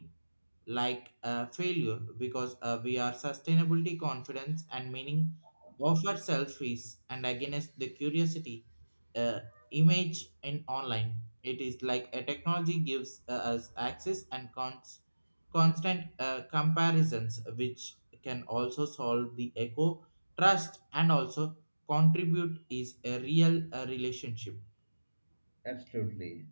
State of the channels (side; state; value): both; inverted; correlation -1.00